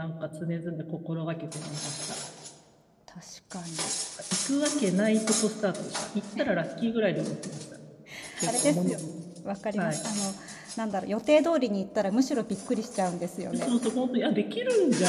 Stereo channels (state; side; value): identical; both; correlation 1.00